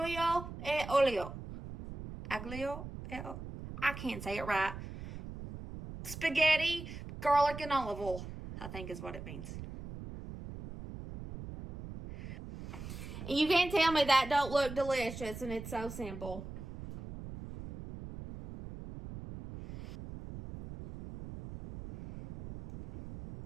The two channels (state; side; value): noise; right; rumble, 11 dB below the sound